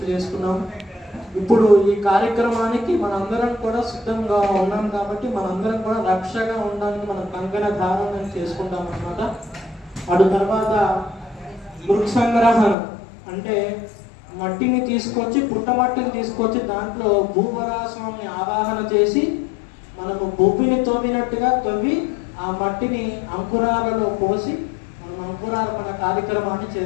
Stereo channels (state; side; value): drops out; right; at 12.8 s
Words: చేసుకున్నాం. ఇప్పుడు ఈ కార్యక్రమానికి మనందరం కూడా సిద్ధంగా ఉన్నాం కాబట్టి మనందరం కూడా రక్షగా ఉండడానికి మనం కంకణ ధారణ చేసుకుంటాం అన్నమాట. అటు తర్వాత మృత్సంగ్రహణ అంటే మట్టిని తీసుకొచ్చి పుట్టమట్టిని తీసుకొచ్చి దాంట్లో భూవరాస్వామిని ఆవాహన చేసి మనము భూమిని తవ్వినట్టుగా తవ్వి ఆ మట్టిని అంకురాలలో పోసి అంకురార్పణ కార్యక్రమాన్ని